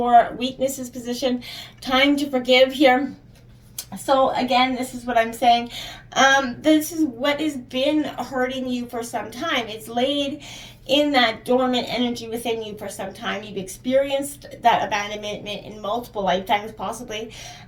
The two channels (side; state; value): both; identical; correlation 1.00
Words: weaknesses position. Time to forgive here. So again, this is what I'm saying. This is what has been hurting you for some time. It's laid in that dormant energy within you for some time. You've experienced that abandonment in multiple lifetimes possibly.